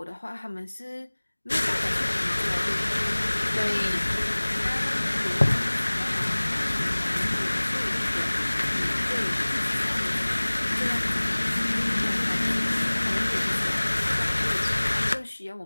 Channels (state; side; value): inverted; both; correlation -1.00